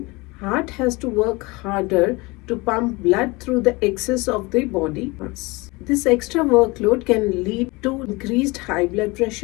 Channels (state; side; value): quieter; right; 24.3 dB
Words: heart has to work harder to pump blood through the excess of the body mass. This extra workload can lead to increased high blood